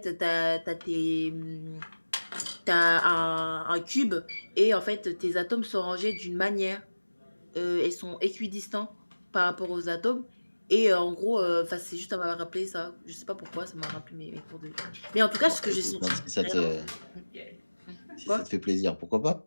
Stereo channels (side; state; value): both; inverted; correlation -1.00